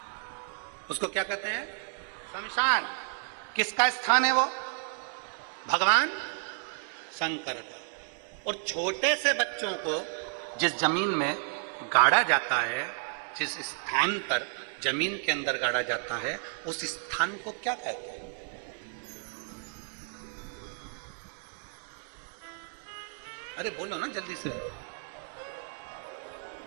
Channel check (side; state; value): left; silent; 57 dB below the other